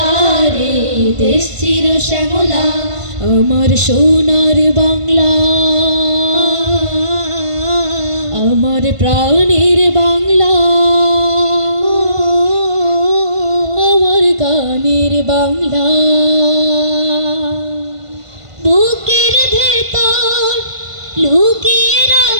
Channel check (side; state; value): left; late; 1.5 ms